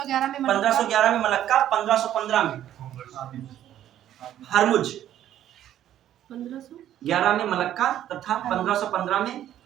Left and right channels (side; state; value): left; quieter; 11.6 dB